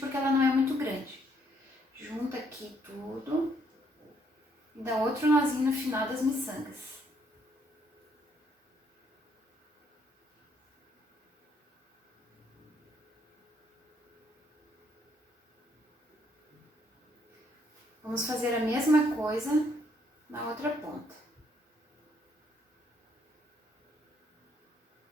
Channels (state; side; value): normal; both; correlation 0.70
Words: ela não é muito grande. Junta aqui tudo e dá outro nozinho no final das miçangas. Vamos fazer a mesma coisa na outra ponta.